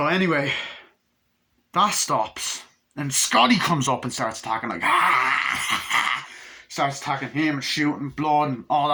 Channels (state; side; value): identical; both; correlation 1.00